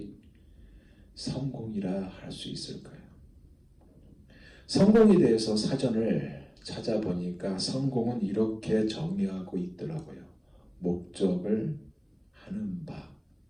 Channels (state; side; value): identical; both; correlation 1.00